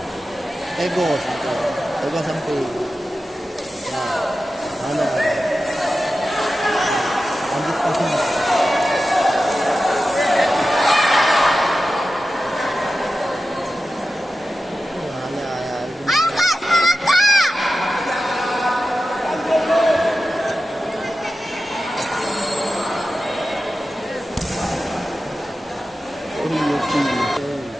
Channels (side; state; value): both; normal; correlation 0.93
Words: Tegos. Tegos sampai. Mana? Ambil pasang. Ayo Kak, semangat Kak.